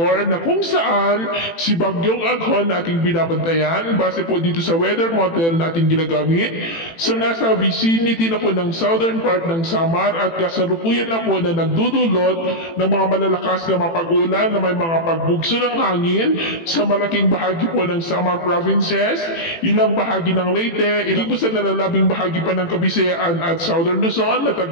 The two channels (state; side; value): late; right; 18 ms